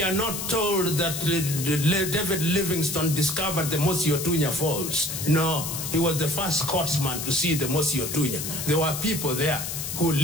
are not told that David Livingstone discovered the Mosi Otunya Falls. No, he was the first Scotsman to see the Mosi Otunya. There were people there who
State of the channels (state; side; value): noise; left; hiss, 5 dB below the sound